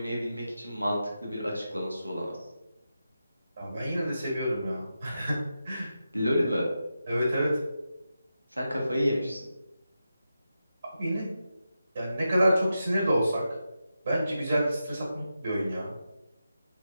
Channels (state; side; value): inverted; both; correlation -0.89